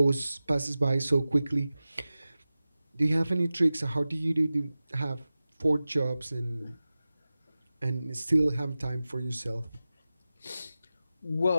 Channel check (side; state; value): both; inverted; correlation -0.95